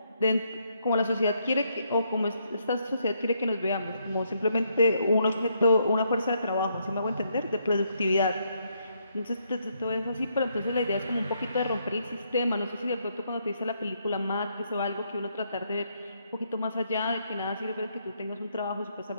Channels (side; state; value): both; inverted; correlation -0.75